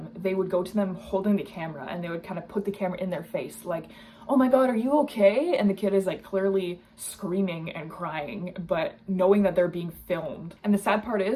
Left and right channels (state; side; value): identical; both; correlation 1.00